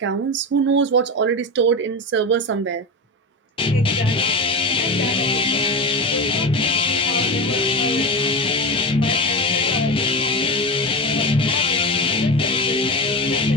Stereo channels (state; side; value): normal; both; correlation 0.21